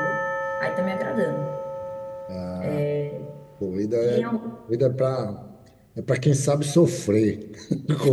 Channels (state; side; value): identical; both; correlation 1.00